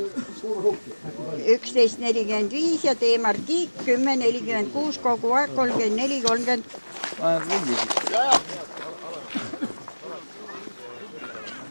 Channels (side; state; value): both; inverted; correlation -1.00